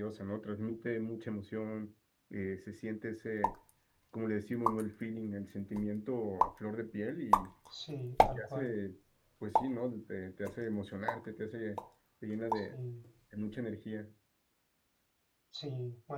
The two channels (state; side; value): identical; both; correlation 1.00